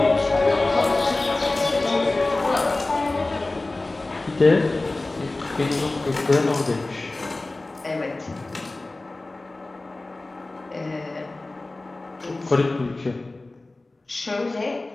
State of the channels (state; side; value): quieter; right; 3.0 dB